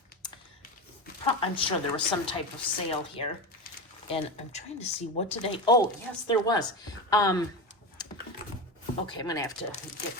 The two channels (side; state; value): both; normal; correlation 0.21